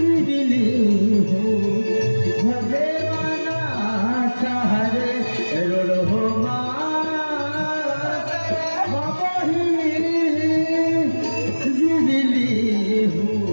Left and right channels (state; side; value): inverted; both; correlation -1.00